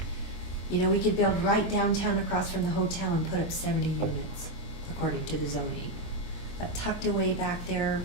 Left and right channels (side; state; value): right; late; 23 ms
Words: You know, we could build right downtown across from the hotel and put up 70 units, according to the zoning. But tucked away back there,